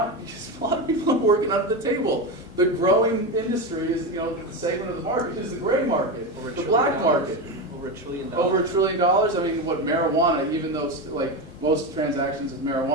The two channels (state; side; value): normal; both; correlation 0.16